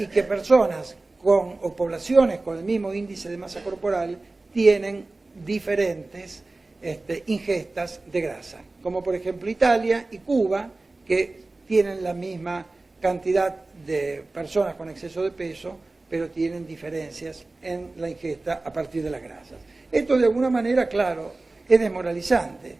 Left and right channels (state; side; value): quieter; left; 3.2 dB